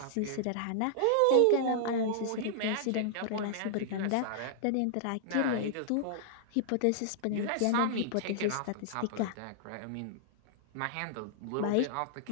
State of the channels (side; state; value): both; different; correlation -0.01